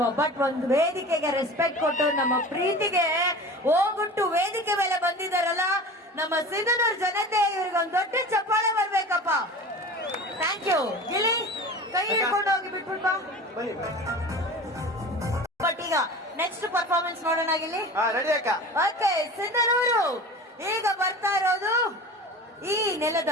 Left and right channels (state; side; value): normal; both; correlation 0.36